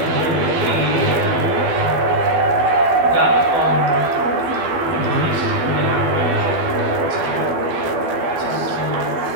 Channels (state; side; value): late; left; 12 ms